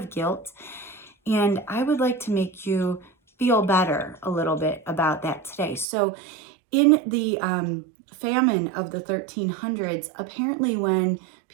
guilt. And I would like to make you feel better a little bit about that today. So in the famine of the 1300s, apparently when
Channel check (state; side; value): drops out; left; at 5.9 s